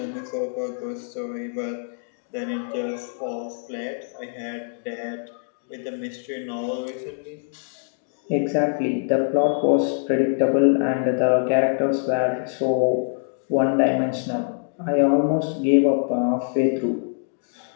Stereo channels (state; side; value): silent; right; digital silence